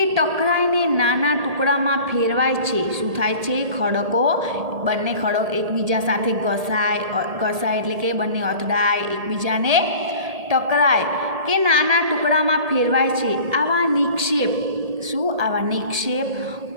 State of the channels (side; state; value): left; late; 1.8 ms